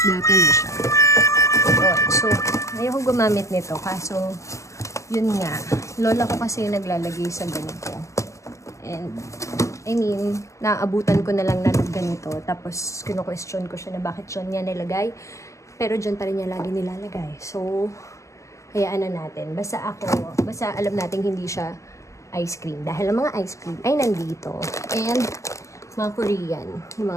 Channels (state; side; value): late; right; 0.15 ms